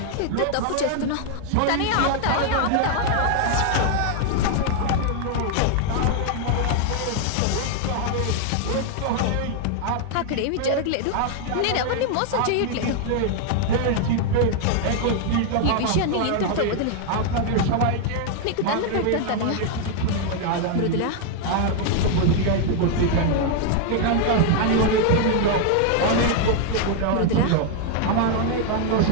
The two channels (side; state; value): both; different; correlation 0.00